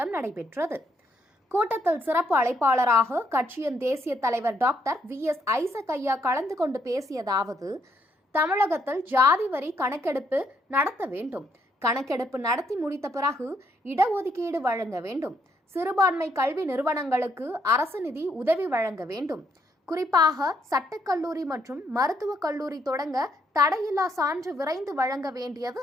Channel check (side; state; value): both; normal; correlation 0.73